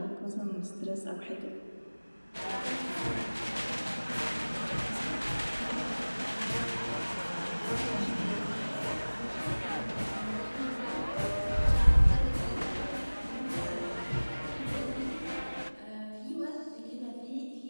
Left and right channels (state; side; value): inverted; both; correlation -1.00